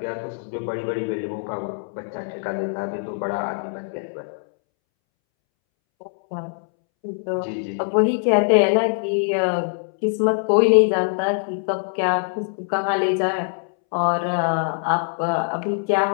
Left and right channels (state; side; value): silent; right; 64 dB below the other